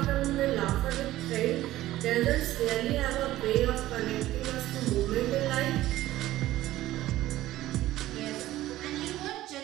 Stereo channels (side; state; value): left; quieter; 15.2 dB